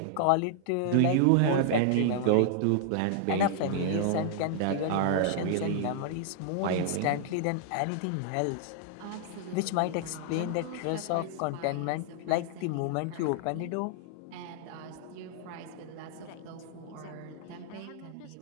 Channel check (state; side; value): different; both; correlation -0.01